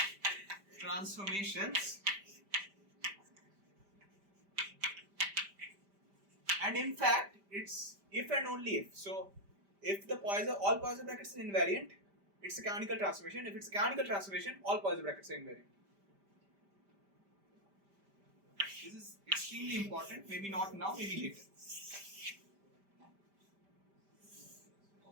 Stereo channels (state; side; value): late; left; 5.1 ms